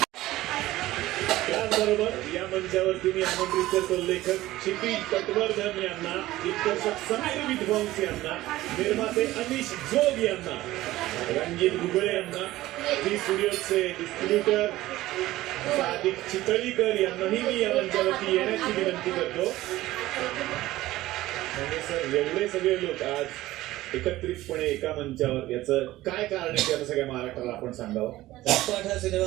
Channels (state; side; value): quieter; left; 16.5 dB